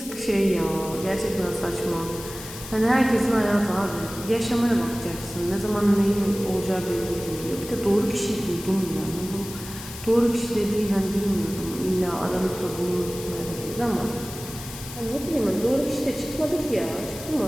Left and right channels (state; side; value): noise; left; hiss, 12 dB below the sound